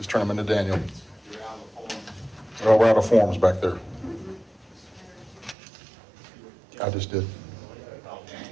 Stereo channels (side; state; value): left; drops out; at 5.6 s